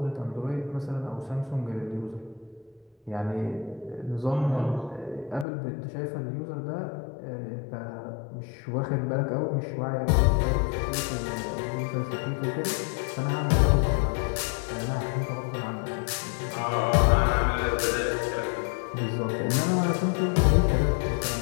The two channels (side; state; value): right; drops out; at 5.5 s